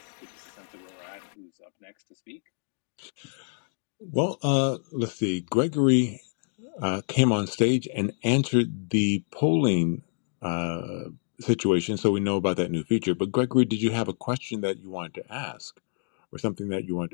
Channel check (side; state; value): right; silent; digital silence